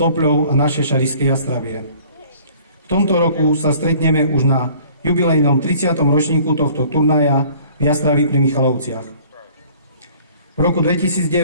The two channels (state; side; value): inverted; both; correlation -0.53